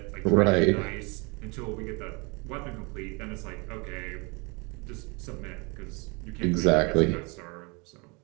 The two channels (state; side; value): quieter; left; 29.5 dB